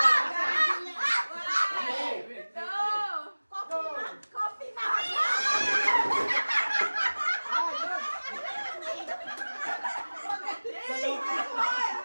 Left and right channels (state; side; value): inverted; both; correlation -1.00